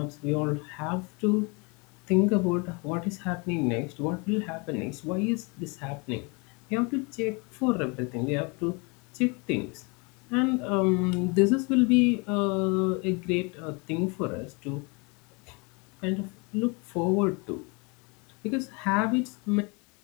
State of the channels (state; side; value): quieter; right; 30.4 dB